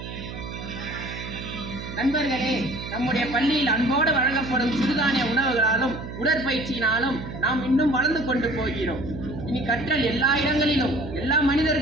நண்பர்களே, நம்முடைய பள்ளியில் அன்போடு வழங்கப்படும் சிறுதானிய உணவுகளாலும் உடற்பயிற்சியினாலும் நாம் இன்னும் வளர்ந்து கொண்டு போகிறோம். இனி கற்றல் எல்லா இடங்களிலும் எல்லா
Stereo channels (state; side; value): noise; right; hum, 10 dB below the sound